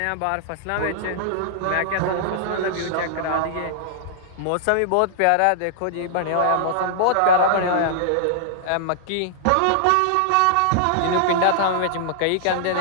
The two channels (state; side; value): different; both; correlation -0.01